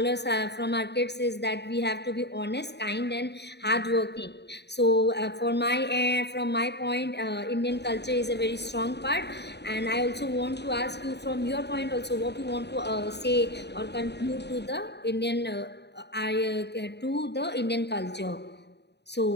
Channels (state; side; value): late; right; 0.49 ms